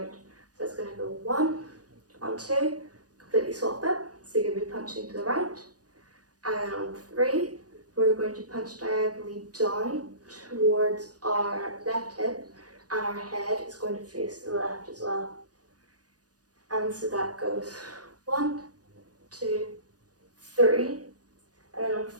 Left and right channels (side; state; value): left; late; 0.68 ms